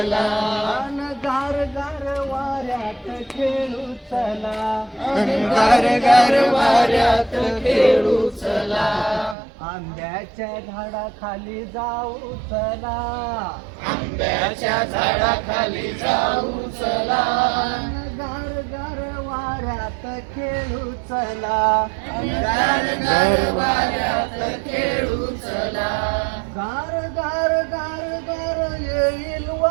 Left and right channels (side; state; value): left; drops out; at 9.3 s